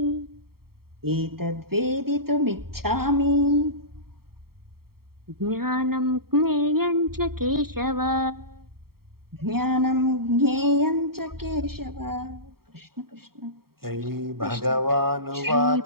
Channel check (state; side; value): late; left; 0.94 ms